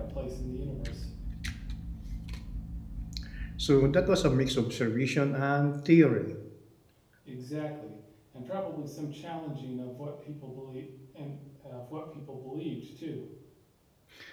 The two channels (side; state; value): both; identical; correlation 1.00